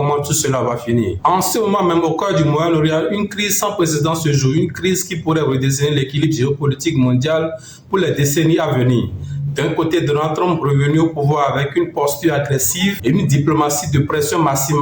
tout cela va finir. En ce moment même, au cœur du Moyen-Orient, une crise sans précédent se joue, une crise qui pourrait redessiner l'équilibre géopolitique mondial pour les décennies à venir. D'un côté, Donald Trump revenu au pouvoir avec une posture agressive et une diplomatie de pression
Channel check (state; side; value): identical; both; correlation 1.00